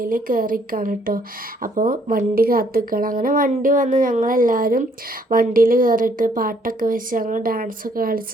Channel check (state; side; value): normal; both; correlation 0.66